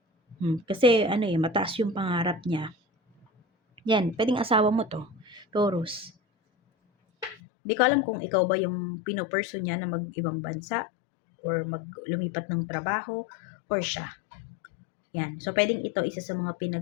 Kasi ano mataas yung pangarap niya. Yan, pwedeng asawa mo to, Taurus. Hindi ko alam kung ikaw ba yung pinopursue niya na mag-ibang bansa or lumipat ng trabaho or siya. Yan. So, pwedeng ito isa sa mga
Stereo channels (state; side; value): drops out; right; at 7.4 s